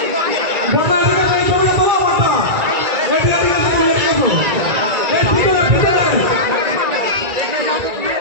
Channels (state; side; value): late; left; 1.9 ms